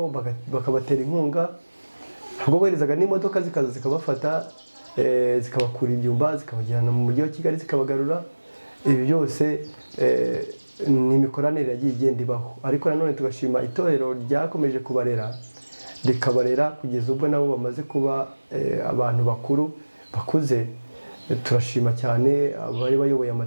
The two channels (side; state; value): both; inverted; correlation -1.00